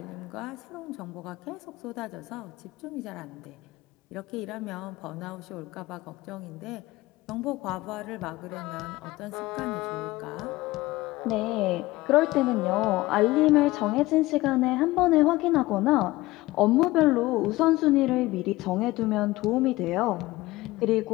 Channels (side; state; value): right; quieter; 19.0 dB